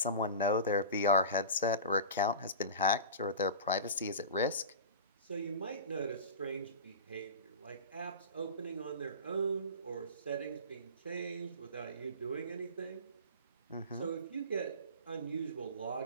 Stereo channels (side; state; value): both; inverted; correlation -0.32